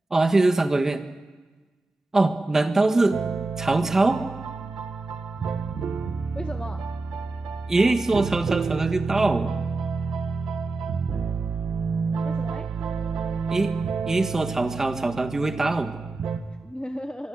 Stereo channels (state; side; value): quieter; left; 3.1 dB